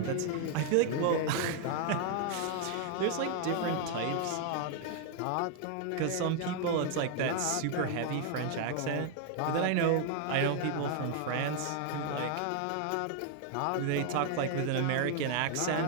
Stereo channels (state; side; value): different; both; correlation 0.00